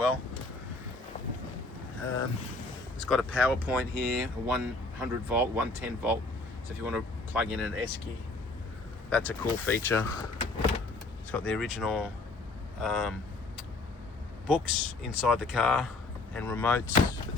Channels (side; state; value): right; quieter; 3.1 dB